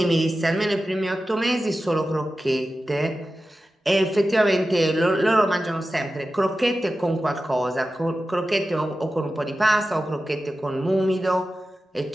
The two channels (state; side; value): normal; both; correlation 0.93